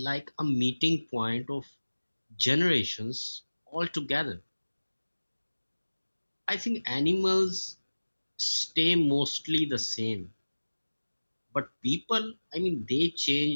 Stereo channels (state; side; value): inverted; both; correlation -1.00